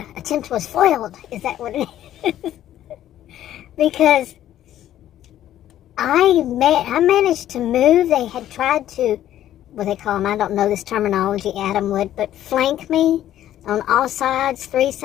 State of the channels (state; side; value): quieter; right; 12.2 dB